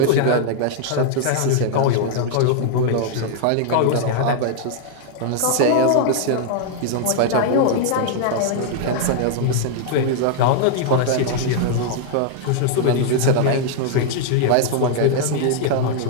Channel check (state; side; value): different; both; correlation -0.01